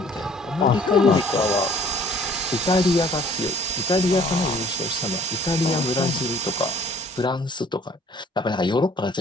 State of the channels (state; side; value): normal; both; correlation 0.54